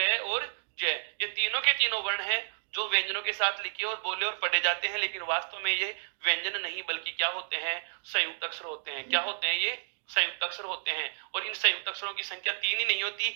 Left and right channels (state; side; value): silent; left; digital silence